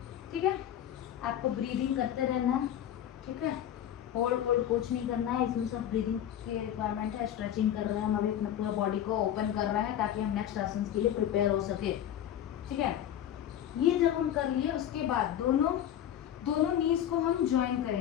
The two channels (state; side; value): quieter; right; 10.6 dB